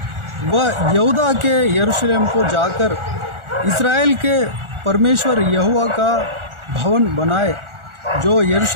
वह यहूदा के यरूशलेम को जाकर इस्राएल के परमेश्वर यहोवा का भवन बनाए। जो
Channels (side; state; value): left; late; 1.4 ms